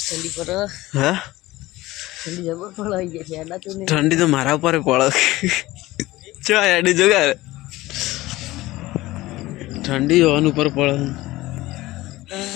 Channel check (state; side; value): quieter; right; 18.2 dB